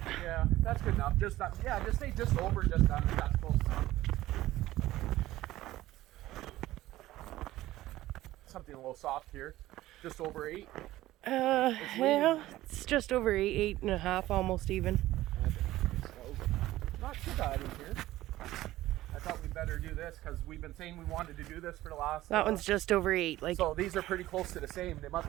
Yeah, that's good enough. Just yeah, just say just over, just under. That's close enough. Something a little soft here. Just over 8. Yeah, it's just over 8, 8.5, almost even. Not too bad in here. I thought we'd better do this because we've been saying we wanted to do this for the last. That one's just over 8. Like. So these are pretty close to the same. They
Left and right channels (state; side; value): quieter; left; 15.9 dB